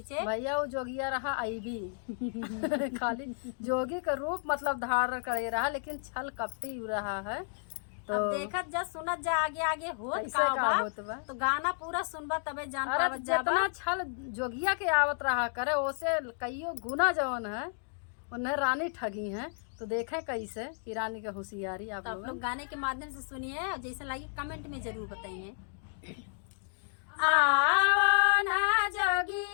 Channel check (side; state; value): right; silent; digital silence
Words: भैया वो जोगिया रहा आईबी खाली जोगी का रूप मतलब धारण करे रहा, लेकिन छल कपटी रहा है। तो अब देखत जा सुनत जा आगे आगे होत ऐसे का का होत बा। तो गाना पूरा सुनबा तबे जान अरे पावत जा जितना छल जोगिया के आवत रहा करे ओसे कईयो गुना जवन है उन्हें रानी ठगी है। तो देखें कैसे कि रानी का होशियारी आप लोग गाने के माध्यम से सुनिए और जैसे लगी कमेंट में जरूर बताइए। आओ ना